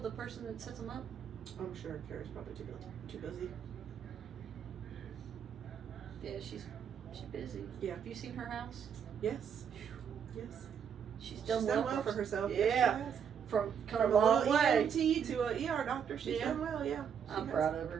person that sets them up? I'm sure Kara's probably too busy. Yeah, she's busy. Yeah. Have you seen her house? Yes. Yes. She's She's done done well for herself. Yeah. Yes, she has. From come From a long little way. EMT to a ER doctor. She's Yeah. done well. Yeah. I'm proud of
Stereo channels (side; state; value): left; quieter; 7.6 dB